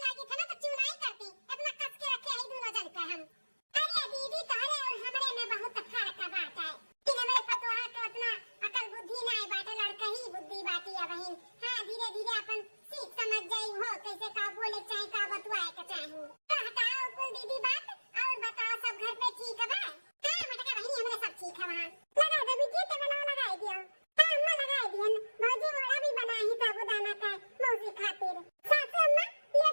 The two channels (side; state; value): both; inverted; correlation -1.00